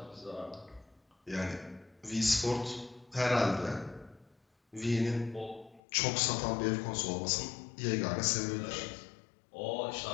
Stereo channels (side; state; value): right; drops out; at 5.8 s